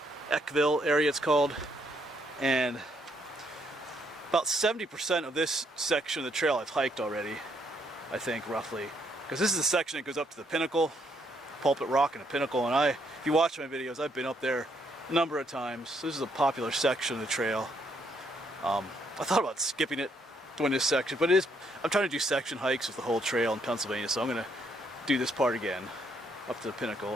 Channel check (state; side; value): normal; both; correlation 0.72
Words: Eckville area it's called. And about 70% of this section of the trail I've hiked already, I think, roughly. Because this is the section that goes up to the pinnacle, Pulpit Rock and the pinnacle. And if you watch my videos, I've been up there a number of times. So this is a popular section of the trail. I thought about skipping it doing this section, but I'm trying to do section hikes with the whole trail in Pennsylvania, so I'm going to do this part again, up to the